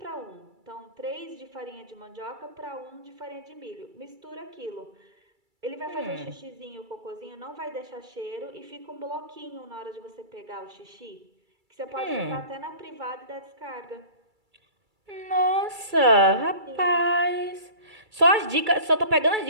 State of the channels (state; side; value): late; left; 2.3 ms